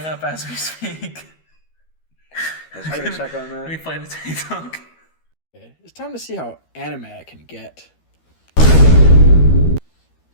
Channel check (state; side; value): late; right; 13 ms